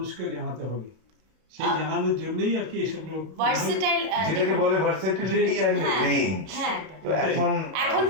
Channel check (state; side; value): late; left; 32 ms